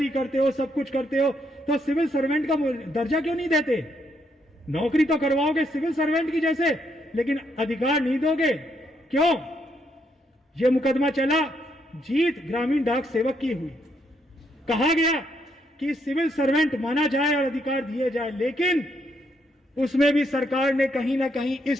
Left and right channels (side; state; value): both; normal; correlation 0.75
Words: करते हो, सब कुछ करते हो, तो सिविल सर्वेंट का दर्जा क्यों नहीं देते? नौकरी तो करवाओगे सिविल सर्वेंट की जैसे, लेकिन अधिकार नहीं दोगे, क्यों? यह मुकदमा चला, जीत ग्रामीण डाक सेवक की हुई। कहा गया कि सिविल सर्वेंट माना जाए और अधिकार दिए जाए, लेकिन उसमें भी सरकार ने कहीं ना कहीं